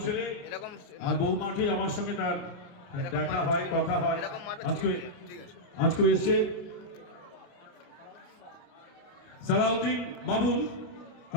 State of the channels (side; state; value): right; late; 29 ms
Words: ছেলে। এরকম আর বহু মাঠে আমার সঙ্গে তার দেখা হয়, কথা হয়। আজকে এসছে সালাউদ্দিন বাবুল,